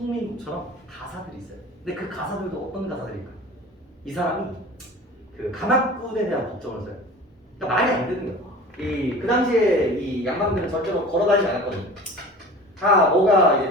가사들이 있어요. 근데 그 가사들도 어떤 가사들일까? 이 사람이 그 가마꾼에 대한 걱정을 써요. 그러니까 말이 안 되는 거예요. 그 당시에 이 양반들은 절대로 걸어다니지 않았거든요. 다 뭐가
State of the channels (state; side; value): normal; both; correlation 0.39